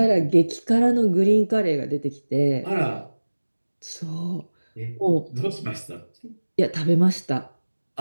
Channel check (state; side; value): inverted; both; correlation -1.00